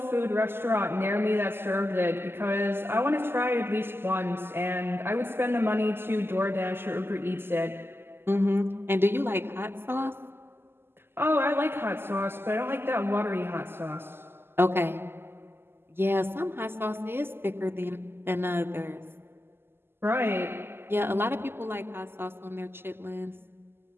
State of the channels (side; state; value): left; late; 0.11 ms